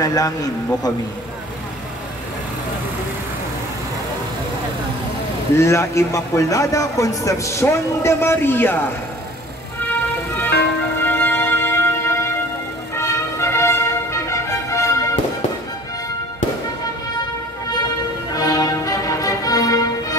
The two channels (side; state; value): both; normal; correlation 0.48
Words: mo kami. La Inmaculada Concepción de María.